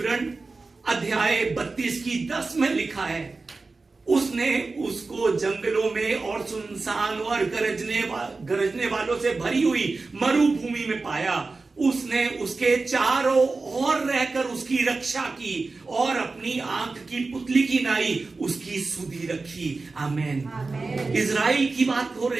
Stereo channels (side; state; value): left; quieter; 3.8 dB